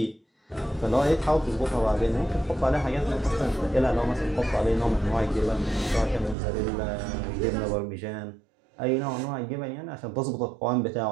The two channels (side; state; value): left; drops out; at 6.4 s